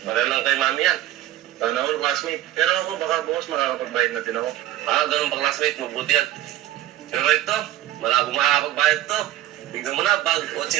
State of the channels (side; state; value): left; quieter; 13.3 dB